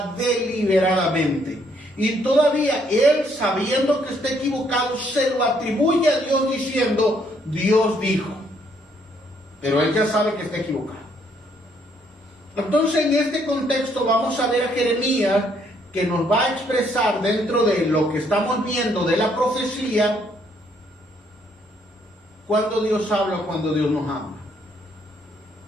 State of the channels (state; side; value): normal; both; correlation 0.69